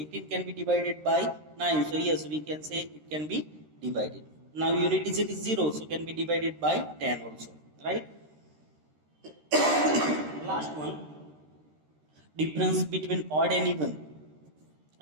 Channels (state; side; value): late; left; 13 ms